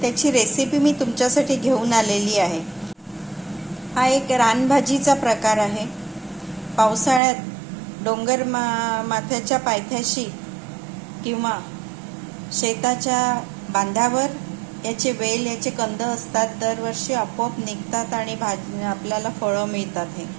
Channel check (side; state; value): left; drops out; at 7.2 s